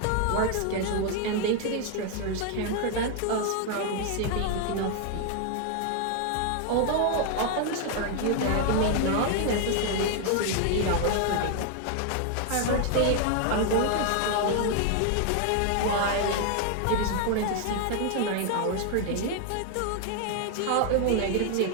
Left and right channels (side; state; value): both; different; correlation 0.00